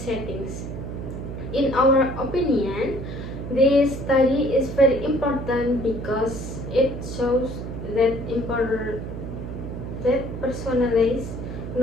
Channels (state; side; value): noise; right; hum, 7 dB below the sound